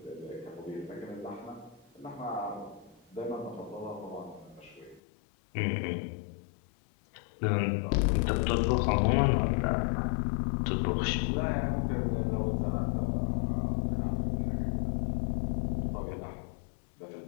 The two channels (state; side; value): drops out; right; at 5.0 s